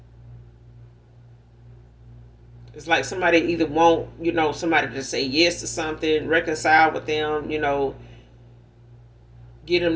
It's like somebody either want, somebody to say yes to something, reconcile with them, get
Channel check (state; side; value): identical; both; correlation 1.00